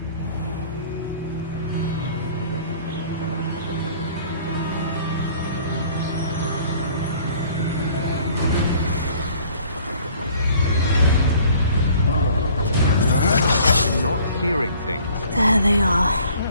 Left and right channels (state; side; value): inverted; both; correlation -0.54